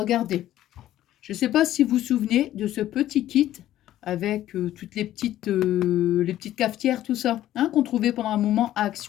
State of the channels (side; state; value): right; quieter; 13.2 dB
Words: je ne sais pas si vous vous souvenez de ce petit kit avec toutes les petites cafetières, tout ça, hein, qu'on trouvait pendant un moment à